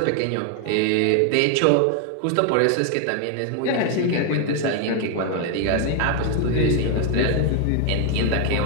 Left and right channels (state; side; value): different; both; correlation 0.01